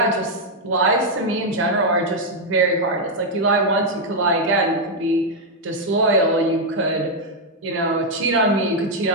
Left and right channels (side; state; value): both; normal; correlation 0.00